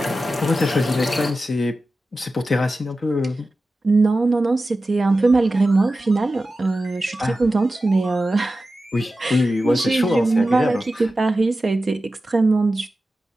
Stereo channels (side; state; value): both; normal; correlation 0.94